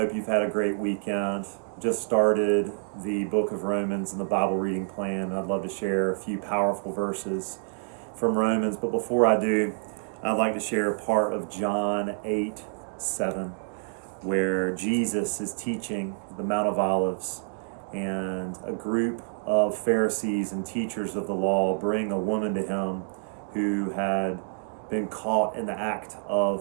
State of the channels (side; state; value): left; silent; digital silence